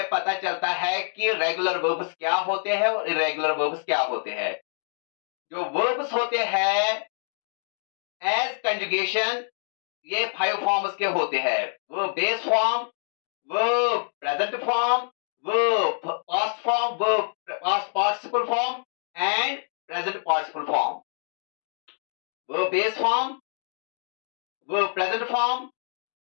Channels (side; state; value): right; silent; digital silence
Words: पता चलता है कि रेगुलर वर्ब्स क्या होते हैं और इरेगुलर वर्ब्स क्या होते हैं। जो वर्ब्स होते हैं एज कंजुगेशन, ये 5 फॉर्म्स के होते हैं। वो बेस फॉर्म, वो प्रेजेंट फॉर्म, वो पास्ट फॉर्म, वो past participle form and present participle form. वो बेस फॉर्म, वो प्रेजेंट फॉर्म,